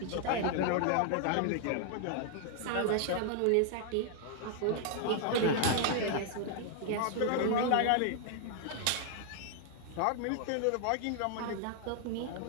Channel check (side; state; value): both; different; correlation 0.00